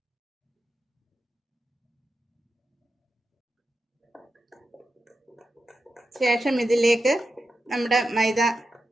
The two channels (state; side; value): normal; both; correlation 0.90